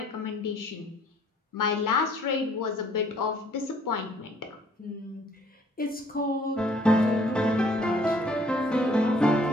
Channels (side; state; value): both; normal; correlation 0.60